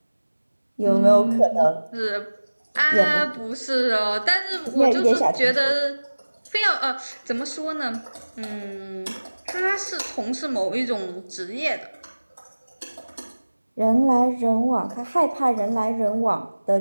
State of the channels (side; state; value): both; inverted; correlation -1.00